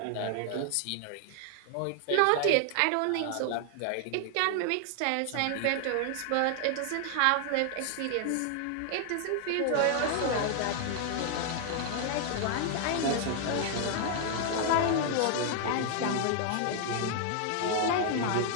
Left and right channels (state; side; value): different; both; correlation 0.00